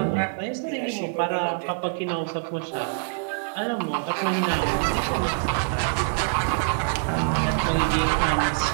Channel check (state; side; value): silent; left; digital silence